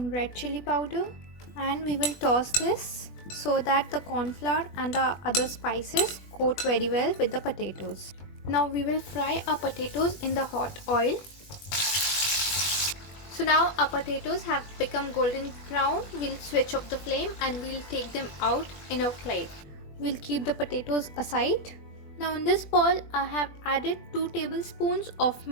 red chili powder, and we will toss this so that the corn flour and the other spices coat very well with the potatoes. Now we will fry our potatoes in the hot oil. So now our potatoes have become golden brown. We'll switch off the flame and we'll take them out in a plate. We'll keep the potatoes aside. Now in this bowl I have added 2 tablespoons of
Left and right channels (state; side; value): late; right; 20 ms